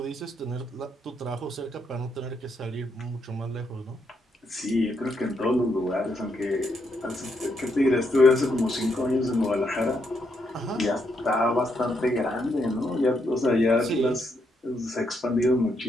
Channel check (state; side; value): normal; both; correlation 0.78